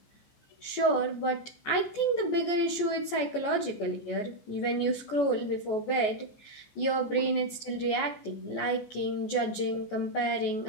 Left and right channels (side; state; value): right; late; 14 ms